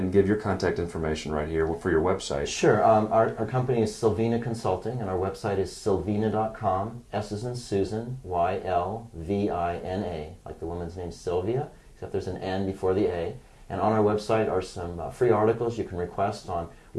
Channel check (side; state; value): both; identical; correlation 1.00